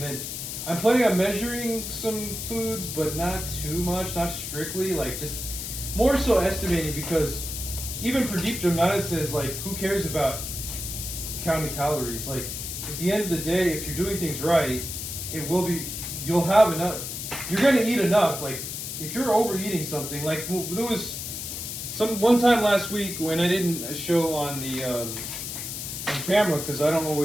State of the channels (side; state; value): left; noise; hiss, 6 dB below the sound